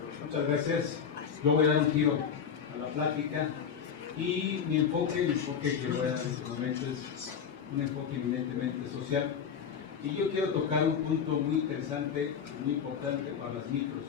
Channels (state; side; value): quieter; right; 7.3 dB